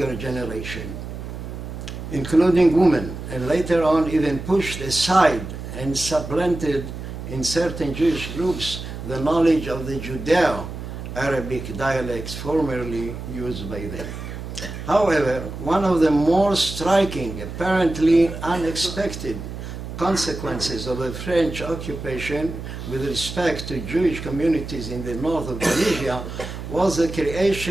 generation, including women, and later on even pushed aside and supplanted in certain Jewish groups the knowledge of the Judeo-Arabic dialects formerly used by them. However, one of the more striking, apparently unexpected consequences of the French occupation with respect to Jewish communities in the north of Tunisia was the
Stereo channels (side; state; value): right; noise; hum, 9 dB below the sound